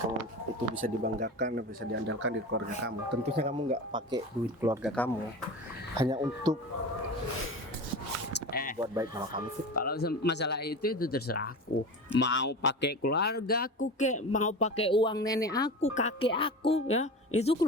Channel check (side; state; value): both; normal; correlation 0.29